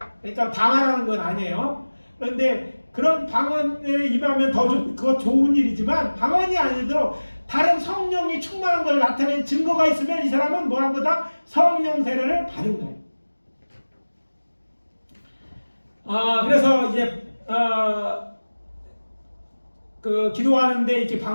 그러니까 다 말하는 건 아니에요. 그런데 그런 방언에 임하면 그거 좋은 일이지만 방언이 아니더라도 다른 성령이 충만한 걸 나타낸 증거가 있으면 이 사람은 뭐한 거다? 성령 세례를 받은 거예요. 그래서 이제 그 기도하는데 이렇게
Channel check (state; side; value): inverted; both; correlation -1.00